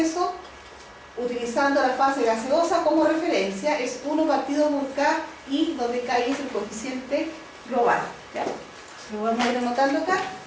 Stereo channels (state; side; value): identical; both; correlation 1.00